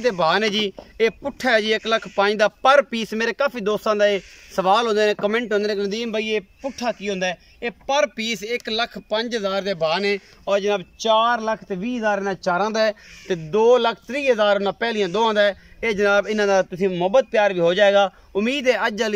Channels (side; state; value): both; identical; correlation 1.00